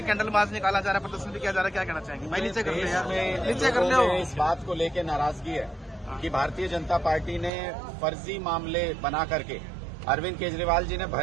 कैंडल मार्च निकाला जा रहा है, प्रदर्शन भी किया जा रहा है, क्या कहना चाहेंगे? भाई नीचे कर ले यार, नीचे कर ले। इस बात को लेकर नाराजगी है कि भारतीय जनता पार्टी ने फर्जी मामले बना करके अरविंद केजरीवाल जी ने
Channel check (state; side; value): drops out; left; at 7.5 s